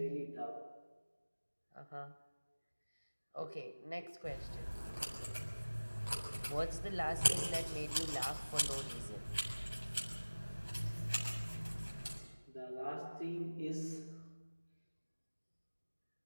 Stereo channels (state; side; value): inverted; both; correlation -1.00